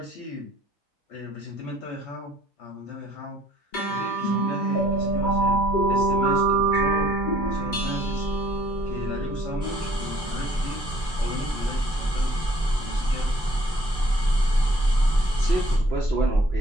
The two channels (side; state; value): both; normal; correlation 0.60